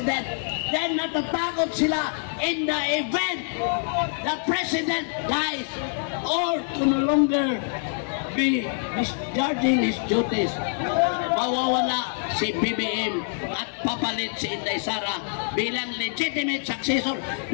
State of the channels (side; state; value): right; silent; 61 dB below the other